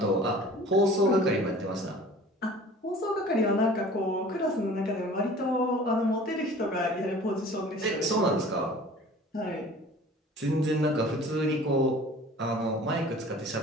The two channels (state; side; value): normal; both; correlation 0.46